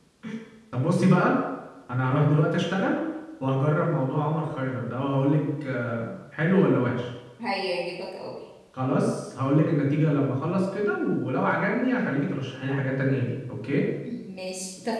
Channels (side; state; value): both; identical; correlation 1.00